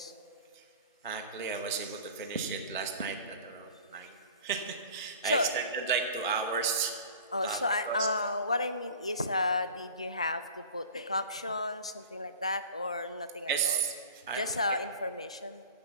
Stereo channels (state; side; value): inverted; both; correlation -0.41